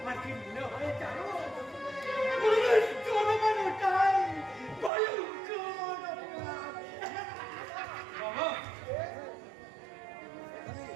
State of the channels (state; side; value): drops out; left; at 4.9 s